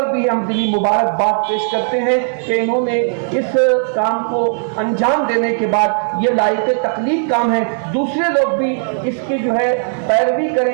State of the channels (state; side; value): silent; left; digital silence